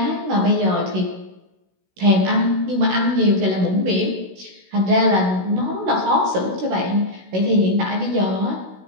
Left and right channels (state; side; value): late; left; 16 ms